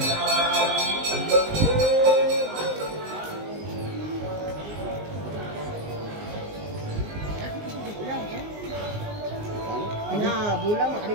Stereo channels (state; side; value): late; left; 19 ms